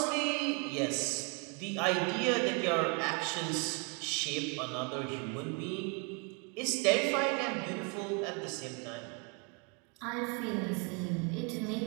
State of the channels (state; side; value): quieter; left; 33.1 dB